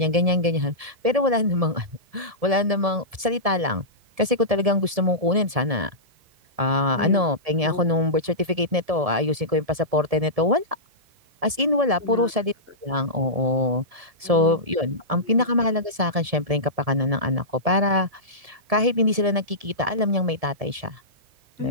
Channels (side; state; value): left; late; 1.7 ms